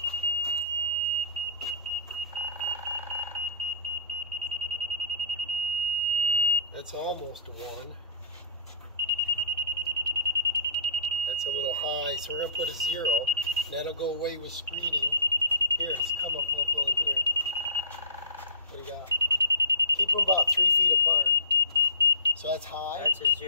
That's almost a 1. That's a little high, so we're gonna put a 0, and that'll go away with screening. Here, it's come up a little in here. What do you got? Keep them about 3 feet apart. So that's high. That's a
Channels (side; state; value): both; inverted; correlation -0.41